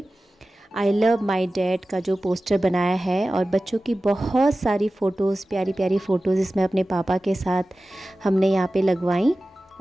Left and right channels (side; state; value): both; normal; correlation 0.96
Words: आई लव माई डैड का जो पोस्टर बनाया है। और बच्चों की बहुत सारी फ़ोटोज़, प्यारी प्यारी फ़ोटोज़ इसमें अपने पापा के साथ हमने यहाँ पे लगवाई।